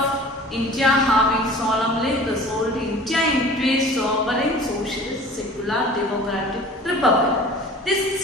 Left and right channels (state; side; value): normal; both; correlation 0.44